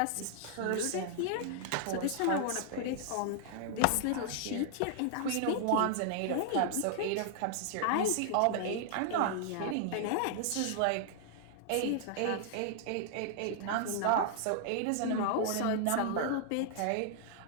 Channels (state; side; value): different; both; correlation 0.00